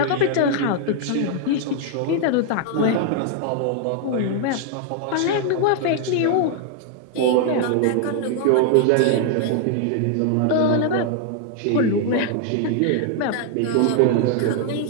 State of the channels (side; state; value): both; different; correlation 0.00